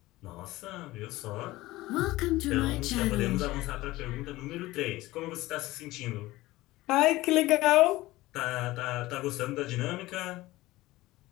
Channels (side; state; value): right; quieter; 18.3 dB